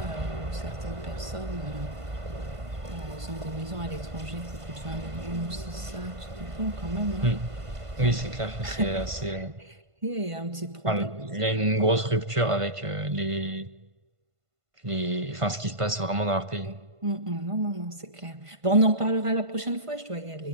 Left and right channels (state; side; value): late; left; 1.5 ms